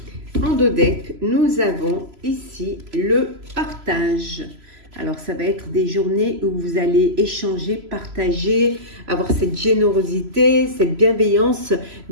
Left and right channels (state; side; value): late; left; 3.0 ms